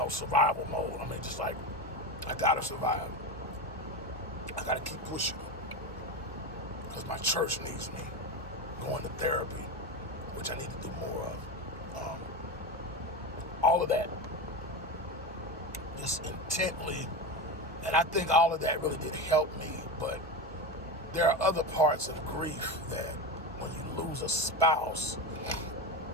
survival mode. Just like, I gotta survive. I gotta keep pushing because my church needs me. Going to therapy, which I need to do more of. All of that, just intently, and I think all of that really did help me, but there are other parts of grief that when you lose a spouse,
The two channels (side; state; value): both; normal; correlation 0.20